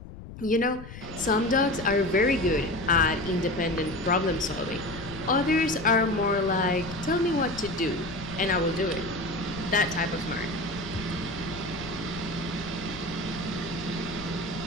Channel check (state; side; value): noise; left; rumble, 13 dB below the sound